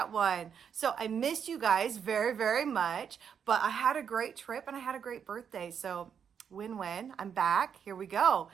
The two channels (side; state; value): left; quieter; 7.5 dB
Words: one. So I missed you guys very, very much, but I had a great trip and I had a great birthday. So win-win. I'm back. Here we go.